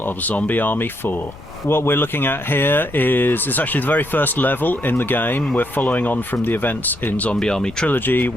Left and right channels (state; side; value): noise; left; rumble, 19 dB below the sound